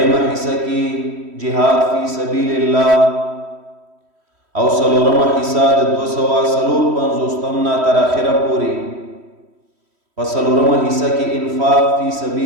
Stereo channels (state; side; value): late; left; 3.1 ms